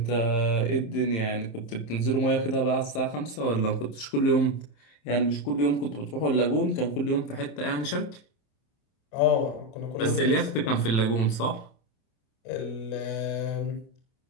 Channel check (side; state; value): right; late; 27 ms